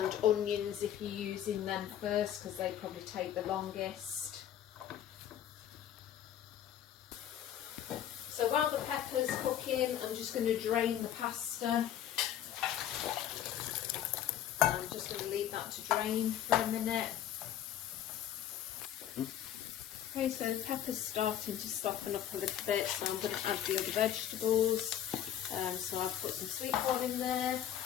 onions if you're using them first, because they probably take the longest. So while the pepper's cooking, I'm just going to drain the pasta. I'm just going to leave that to drain for a minute. Okay, so the pepper's starting to soften up a little bit, so I'm going to add the other vegetables. So I've put some sweetcorn in there.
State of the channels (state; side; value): quieter; right; 10.7 dB